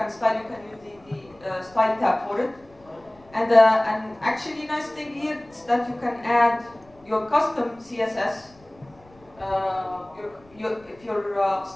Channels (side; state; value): left; noise; rumble, 28 dB below the sound